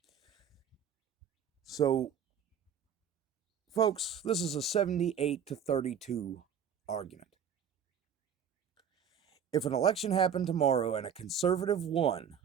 So, folks, this is a 78-32 argument. If an election happened tomorrow and a conservative won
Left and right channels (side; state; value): left; quieter; 7.7 dB